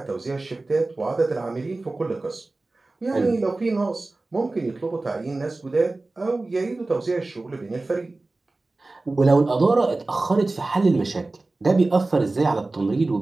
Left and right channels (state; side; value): quieter; left; 3.2 dB